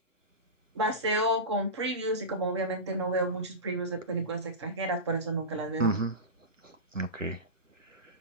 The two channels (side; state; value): both; normal; correlation -0.20